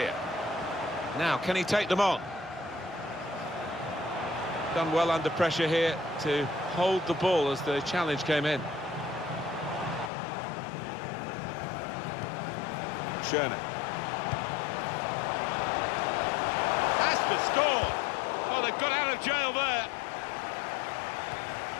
Now, can he take them on? Done well under pressure here to hold the ball as the challenge came in. Schöne. Has to score! Oh, they've got out of jail there.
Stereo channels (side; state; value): right; drops out; at 10.1 s